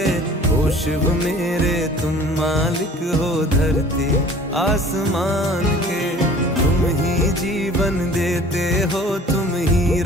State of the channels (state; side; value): normal; both; correlation 0.48